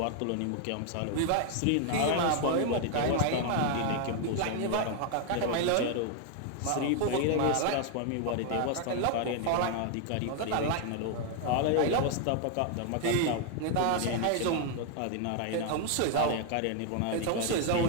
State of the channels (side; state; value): both; different; correlation 0.00